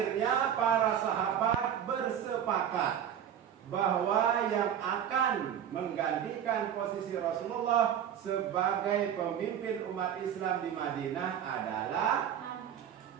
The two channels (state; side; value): quieter; left; 9.4 dB